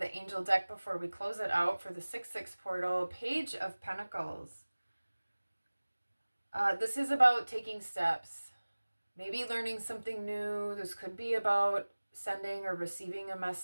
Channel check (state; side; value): inverted; both; correlation -1.00